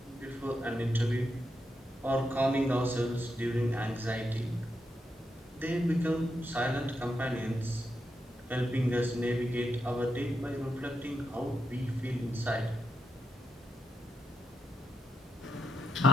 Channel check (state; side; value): normal; both; correlation 0.84